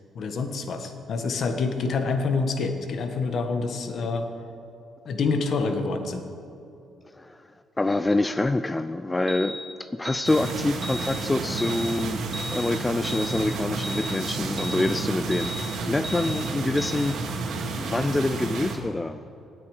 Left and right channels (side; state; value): both; normal; correlation 0.86